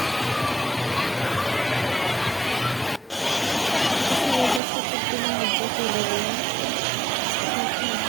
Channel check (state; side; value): drops out; left; at 4.6 s